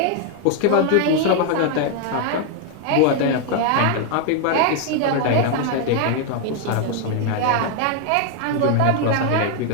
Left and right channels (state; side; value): different; both; correlation 0.00